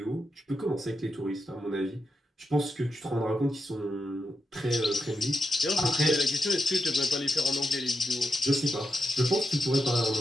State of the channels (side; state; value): both; normal; correlation 0.86